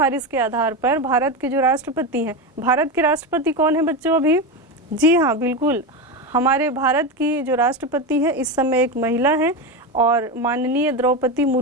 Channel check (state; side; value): normal; both; correlation 0.16